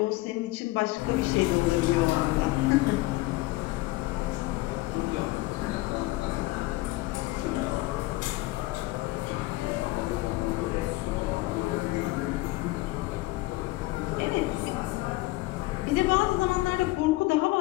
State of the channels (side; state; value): right; quieter; 20.1 dB